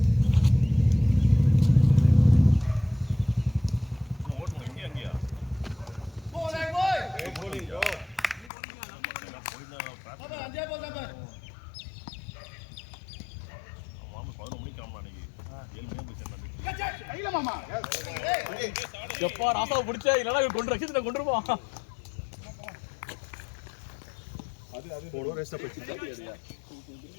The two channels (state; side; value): drops out; right; at 8.5 s